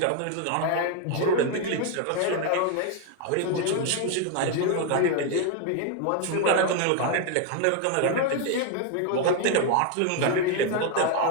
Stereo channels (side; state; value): both; different; correlation 0.01